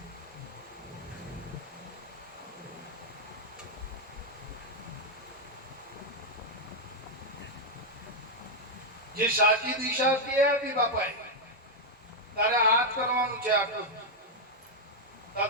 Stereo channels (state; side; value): normal; both; correlation -0.01